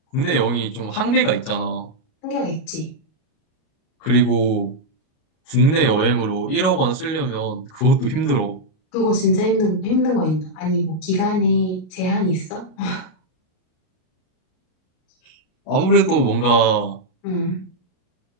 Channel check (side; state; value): right; late; 38 ms